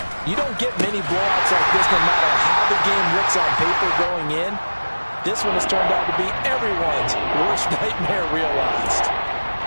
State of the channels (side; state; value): both; inverted; correlation -1.00